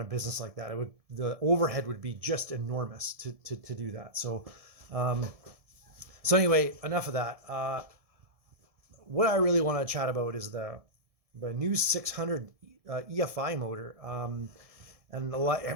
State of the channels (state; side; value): late; left; 1.7 ms